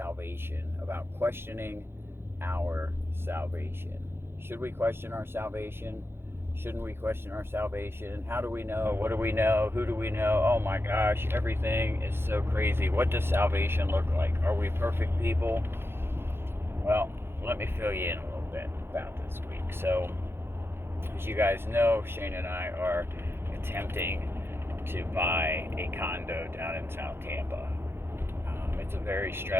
about questioning our salvation. Should we question our salvation? Shouldn't we question our salvation? How do we know? What do we know? Who do we know? Oh my gosh, everything is so crazy. What does salvation look like? Are we perfect people? Well, let me fill you in a little bit about this week. So, as you guys know, Shane and I are attempting to buy a condo down in South Tampa. It's a very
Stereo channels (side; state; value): left; late; 0.11 ms